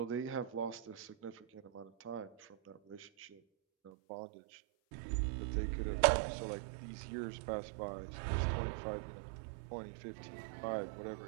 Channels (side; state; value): left; drops out; at 3.9 s